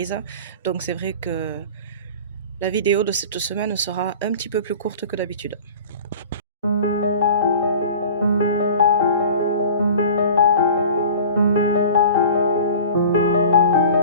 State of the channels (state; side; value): inverted; both; correlation -0.41